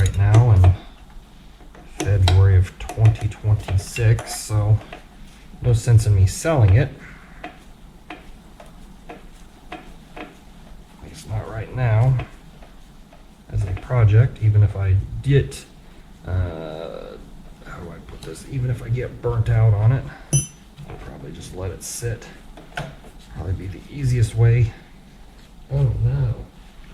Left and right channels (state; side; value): identical; both; correlation 1.00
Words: now in February of 2026, so no sense in me selling it. At least not right now. As a project, even if I get how do I put this? Even if I get burnt out on it, I'll probably just let it sit. Probably be the easiest way. Oh no,